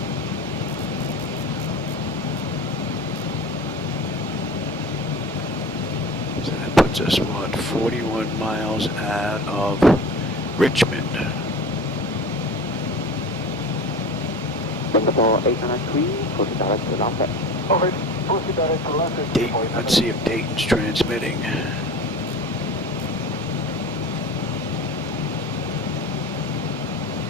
So that puts us, what, 41 miles out of Richmond. Singapore 893, proceed direct to Lambeth. Alright, proceed direct to Lambeth. Dayton, let's see if Dayton's transmitting.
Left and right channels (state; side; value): normal; both; correlation 0.35